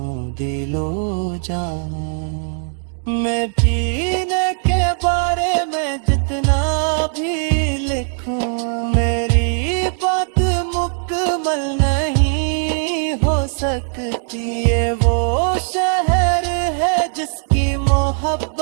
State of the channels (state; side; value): silent; left; 59 dB below the other